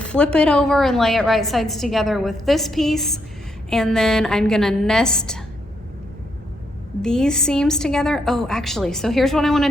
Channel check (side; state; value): both; normal; correlation 0.78